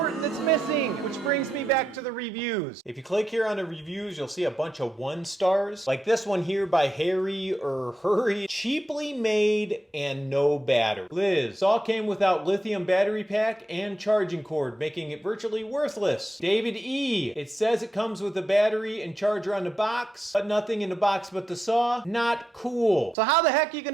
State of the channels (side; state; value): both; normal; correlation 0.86